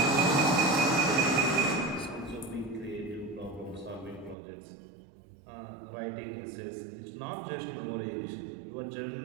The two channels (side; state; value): left; drops out; at 4.4 s